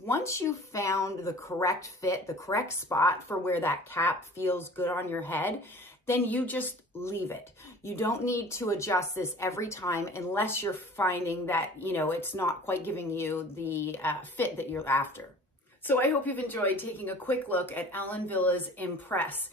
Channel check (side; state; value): both; normal; correlation 0.45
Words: you've found the correct fit, the correct spot for where that cap feels good on your head, then you just leave it. You don't need to adjust this every time unless you're finding that, you know, it's not quite giving you the fit that you're after. So I hope you've enjoyed taking a quick look at Ellen Villa's Impress.